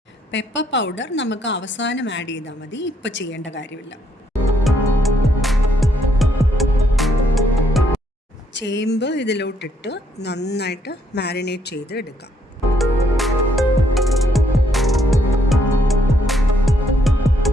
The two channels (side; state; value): both; normal; correlation 0.72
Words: പെപ്പർ പൗഡർ നമുക്ക് അവസാനം ആഡ് ചെയ്താൽ മതി, ഇപ്പം ചെയ്യേണ്ട കാര്യമില്ല. ചേമ്പ് ഇതിലോട്ടിട്ട് നന്നായിട്ട് മാരിനേറ്റ് ചെയ്ത് എടുക്കാം.